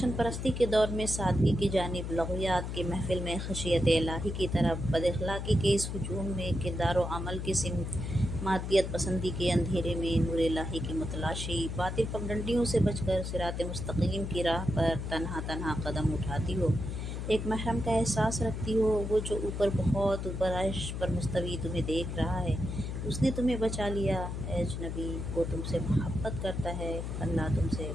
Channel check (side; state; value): left; noise; hum, 4 dB below the sound